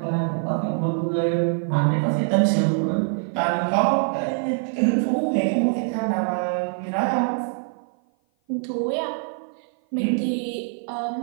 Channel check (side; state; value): left; silent; 55 dB below the other